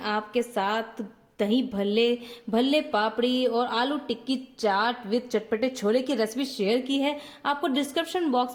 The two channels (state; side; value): identical; both; correlation 1.00